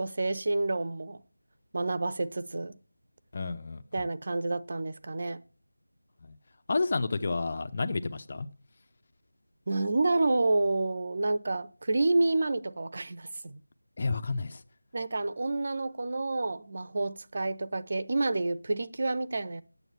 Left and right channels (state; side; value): inverted; both; correlation -0.96